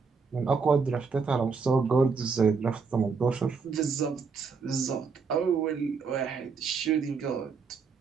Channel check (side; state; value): left; quieter; 5.1 dB